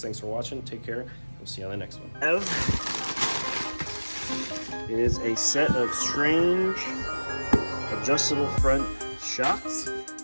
for watching. Take care. We'll see you on the next one. Is a set of strange adjustable front shocks.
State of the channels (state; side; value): inverted; both; correlation -1.00